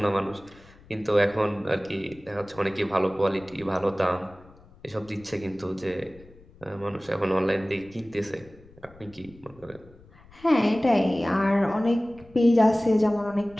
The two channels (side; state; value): left; noise; rumble, 25 dB below the sound